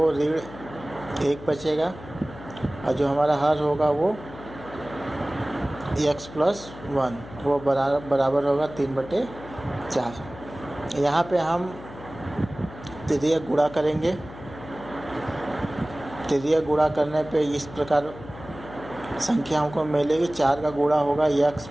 ऋण 1 बचेगा, और जो हमारा हर होगा वो x+1 वो बराबर होगा 3/4। यहाँ पे हम तृतीयक गुणा करेंगे। तृतीयक गुणा करने पे इस प्रकार संख्या हमको मिलेगी। 4 का गुणा होगा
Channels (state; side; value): noise; left; hum, 16 dB below the sound